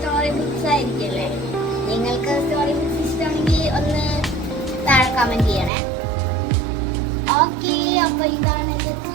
ബുക്സ് ആയിരിക്കല്ലേ. നിങ്ങൾക്ക് സ്റ്റോറി ബുക്സ് ഇഷ്ടമാണെങ്കിൽ ഒന്ന് താഴെ കമന്റ് ചെയ്യണേ. ഓക്കെ, അപ്പൊ ഇതാണ്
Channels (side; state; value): left; drops out; at 5.7 s